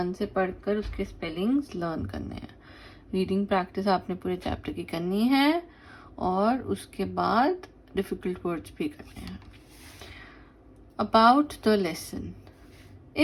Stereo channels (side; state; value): both; identical; correlation 1.00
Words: से पढ़कर उसके स्पेलिंग्स लर्न करने हैं। रीडिंग प्रैक्टिस आपने पूरे चैप्टर की करनी है और उसके बाद डिफ़िकल्ट वर्ड्स भी करने हैं। About the lesson.